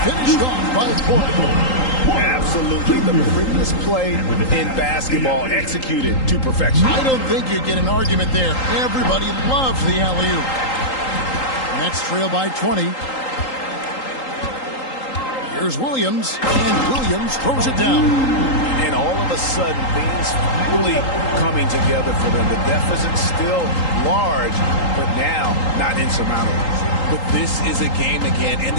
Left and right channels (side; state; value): right; late; 3.8 ms